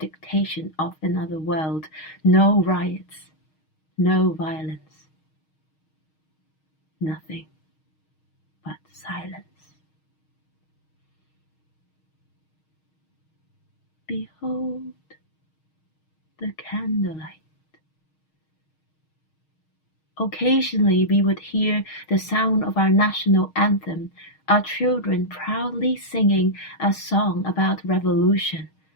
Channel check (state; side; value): late; right; 6.4 ms